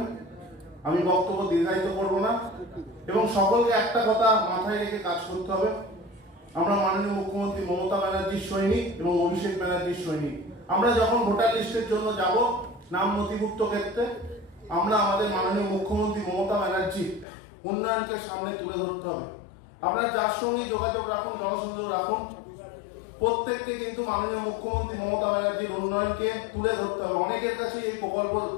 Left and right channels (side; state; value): right; drops out; at 17.2 s